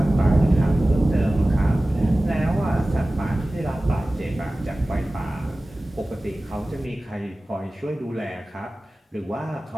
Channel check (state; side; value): normal; both; correlation 0.97